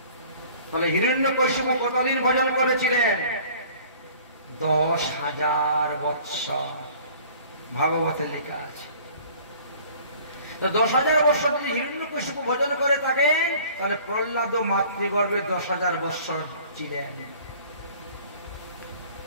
তাহলে হিরণ্যকশিপু কতদিন ভোজন করেছিলেন? 10,000 বৎসর, ভাগবতে লেখা আছে। তো 10,000 বৎসর যদি হিরণ্যকশিপু ভোজন করে থাকেন, তাহলে প্রহ্লাদ মাতৃগর্ভে 10,000 বৎসর ছিলেন।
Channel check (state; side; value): inverted; both; correlation -0.50